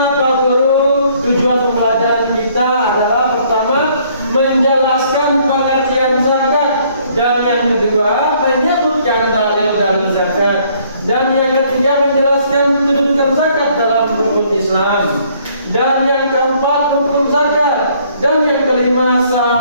Pak Guru tujuan pembelajaran kita adalah pertama menjelaskan pengertian zakat, dan yang kedua menyebutkan dalil-dalil zakat, dan yang ketiga menjelaskan kedudukan zakat dalam hukum Islam, dan yang keempat hukum zakat, dan yang kelima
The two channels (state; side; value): inverted; both; correlation -0.63